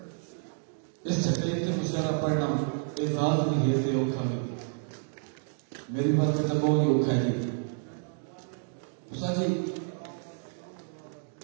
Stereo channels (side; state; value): left; silent; 58 dB below the other